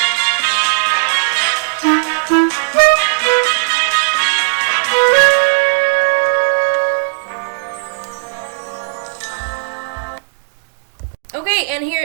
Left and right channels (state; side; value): silent; left; digital silence